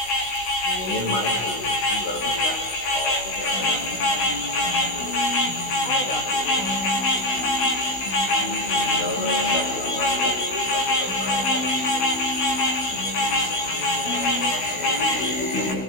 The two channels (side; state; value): right; late; 16 ms